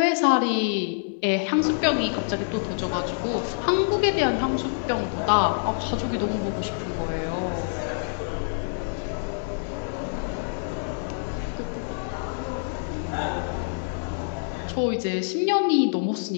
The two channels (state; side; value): silent; right; digital silence